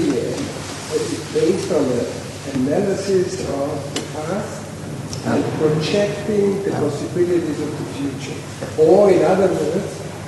based on an analysis of the past and projecting the possibilities of the future? Or in other words,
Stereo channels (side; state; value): both; identical; correlation 1.00